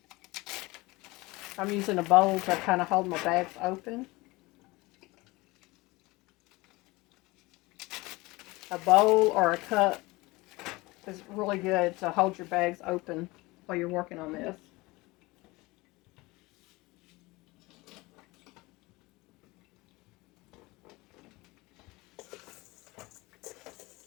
using a bowl to kind of hold my bags open. A bowl or a cup is really good to hold your bags open while you're working on this.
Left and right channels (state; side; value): quieter; right; 22.3 dB